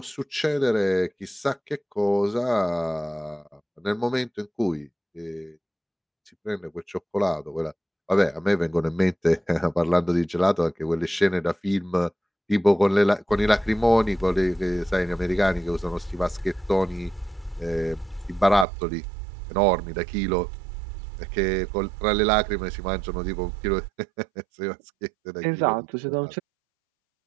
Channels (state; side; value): drops out; left; at 18.7 s